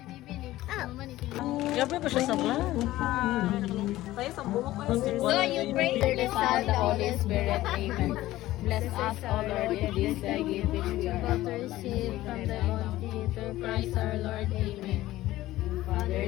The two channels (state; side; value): quieter; right; 16.0 dB